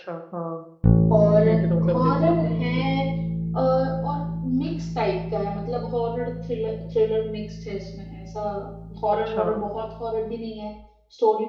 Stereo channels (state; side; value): identical; both; correlation 1.00